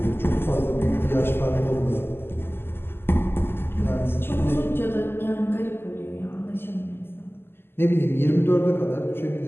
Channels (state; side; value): late; right; 0.11 ms